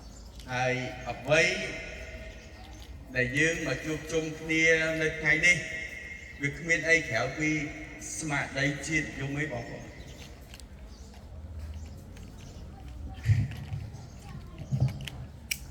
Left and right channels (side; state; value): both; identical; correlation 1.00